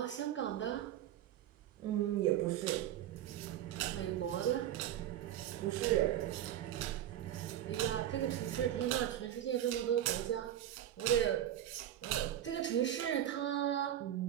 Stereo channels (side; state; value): left; quieter; 11.6 dB